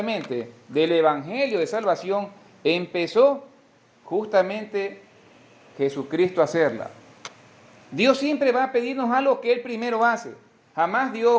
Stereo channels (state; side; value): identical; both; correlation 1.00